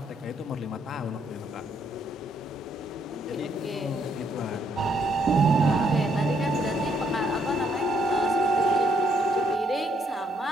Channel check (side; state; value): both; normal; correlation 0.71